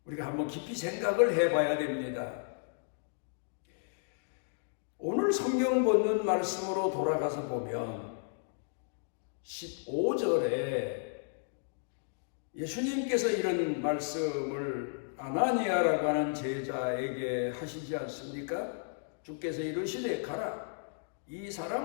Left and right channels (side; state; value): right; silent; digital silence